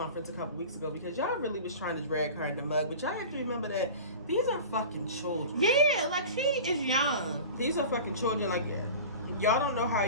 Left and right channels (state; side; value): inverted; both; correlation -0.35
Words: a couple weeks ago because y'all really was trying to drag her in the mud. But y'all have to remember that these are fucking children. Yeah, like, she is young. These are fucking children. Like, y'all don't know how